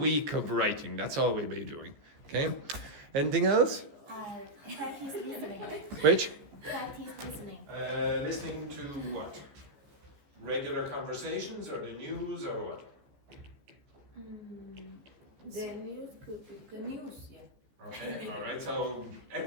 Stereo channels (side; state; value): left; late; 15 ms